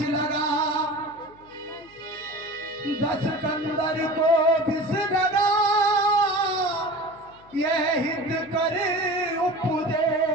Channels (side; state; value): left; noise; hum, 27 dB below the sound